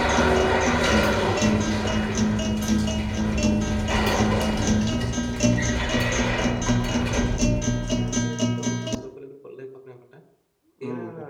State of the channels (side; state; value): both; identical; correlation 1.00